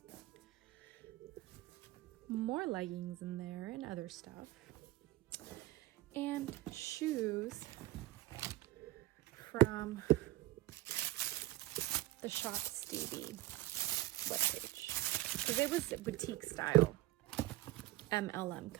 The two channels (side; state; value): left; quieter; 17.2 dB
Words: more leggings in there and other stuff, and shoes from the Shop Stevie webpage. Because it was boutique style MLM